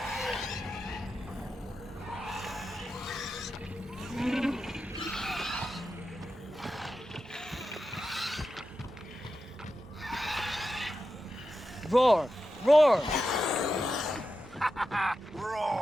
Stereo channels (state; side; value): normal; both; correlation 0.90